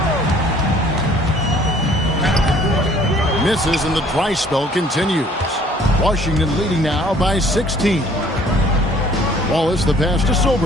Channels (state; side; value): normal; both; correlation 0.56